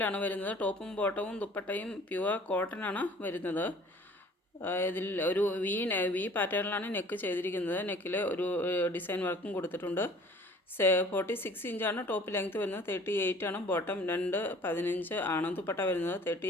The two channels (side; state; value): both; normal; correlation 0.50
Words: വരുന്നത്. ടോപ്പും ബോട്ടവും ദുപ്പട്ടയും പ്യുവർ കോട്ടൺ ആണ് വരുന്നത്. ഇതിൽ ഒരു വി പാറ്റേണിലാണ് നെക്ക് ചെയ്തിരിക്കുന്നത്. നെക്കിൽ ഒരു ഡിസൈൻ വർക്കും കൊടുത്തിട്ടുണ്ട്. 46 ഇഞ്ചാണ് ടോപ്പ് ലെങ്ത് വരുന്നത്. 38 ആണ് ബോട്ടം. 2.15 ആണ് ദുപ്പട്ട വരുന്നത്.